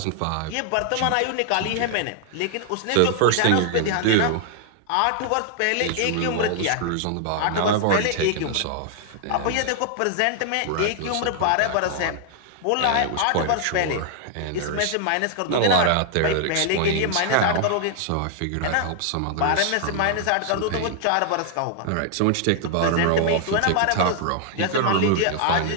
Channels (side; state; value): both; different; correlation 0.00